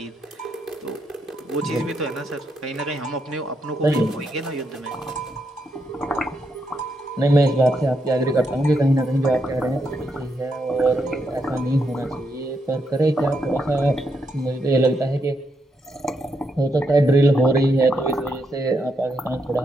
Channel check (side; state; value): both; normal; correlation 0.80